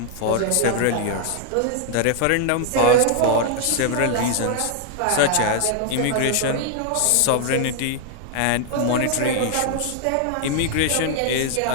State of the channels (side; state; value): both; different; correlation 0.00